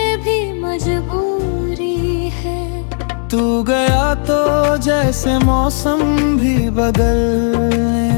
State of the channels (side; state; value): right; silent; 62 dB below the other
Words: भी मजबूरी है। तू गया तो जैसे मौसम भी